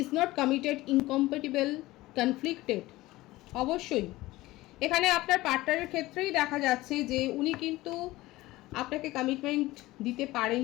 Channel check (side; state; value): right; quieter; 18.4 dB